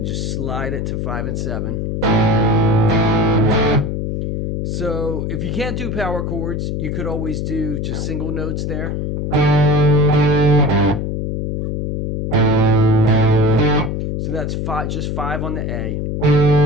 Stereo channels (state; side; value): noise; left; hum, 2 dB below the sound